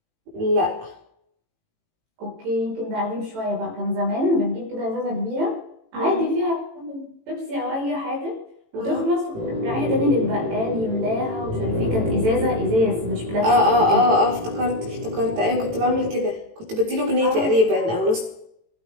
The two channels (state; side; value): late; left; 18 ms